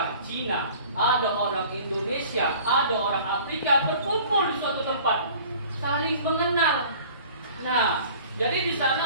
Cina, ada orang Indonesia, ada orang Afrika berkumpul di suatu tempat, saling mengenal. Nah, jadi di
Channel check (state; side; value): inverted; both; correlation -0.47